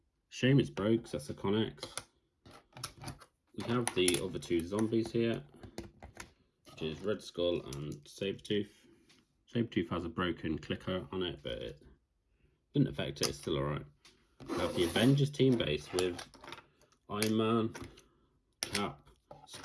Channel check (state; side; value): identical; both; correlation 1.00